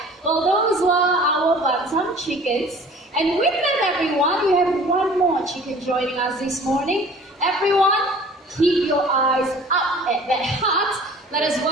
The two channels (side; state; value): both; normal; correlation 0.47